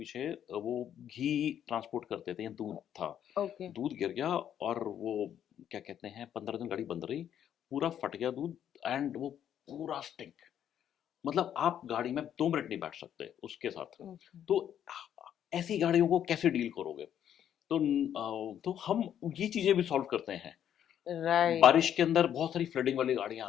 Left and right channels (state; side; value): quieter; right; 9.9 dB